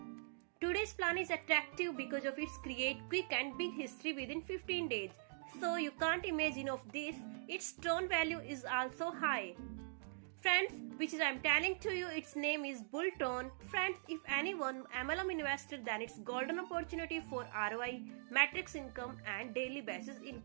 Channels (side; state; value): left; silent; digital silence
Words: Today's plan is attractive because of its create quick and big history within 15 days. So you can't imagine of this, its tron value is also high. Friends, which is I'm telling to you, its name is Bulltron. Friends, if anyone MLM investor, then it's golden opportunity for ROI, matrix income and daily basis